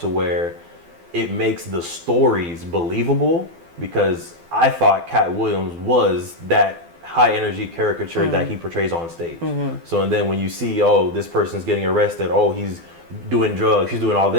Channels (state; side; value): late; left; 12 ms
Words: where it makes the stories believable, because I thought Cat Williams was that high energy caricature that he portrays on stage. So and then when you see, oh, this person's getting arrested, oh, he's doing drugs, he's doing all